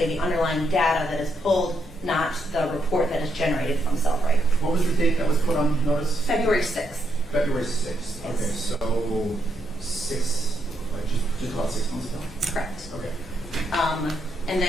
the underlying data that is pulled, not the report that is generated from Cellbrite. What was the date that was put on notice? February 6th. February 6th. Okay, Yes. so just about 6 months ago? Correct. Okay. And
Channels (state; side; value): normal; both; correlation 0.79